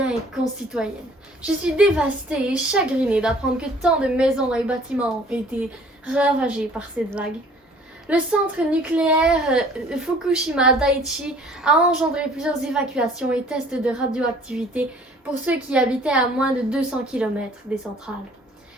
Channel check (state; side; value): normal; both; correlation 0.54